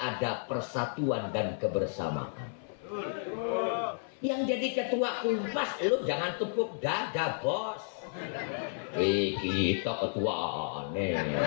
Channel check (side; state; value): right; silent; 56 dB below the other